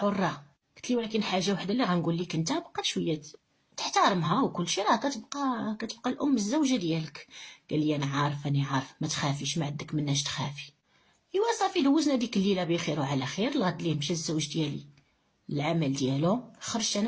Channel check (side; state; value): both; identical; correlation 1.00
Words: قلت لي ولكن حاجه وحده اللي غنقول لك انت بقى شويه تحترمها وكل شيء، راه كتبقى الام الزوجه ديالك. قال لي انا عارف ما تخافيش، ما عندك مناش تخافي. ايوا صافي دوزنا ديك الليله بخير وعلى خير. الغد ليه مشى الزوج ديالي العمل ديالو، خرجت انا